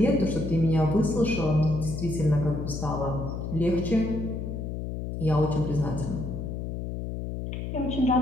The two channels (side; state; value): left; noise; hum, 5 dB below the sound